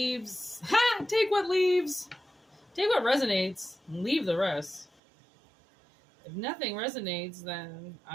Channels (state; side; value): drops out; left; at 4.9 s